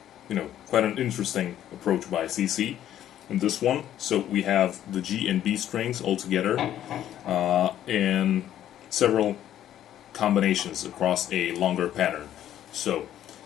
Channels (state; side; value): quieter; right; 11.5 dB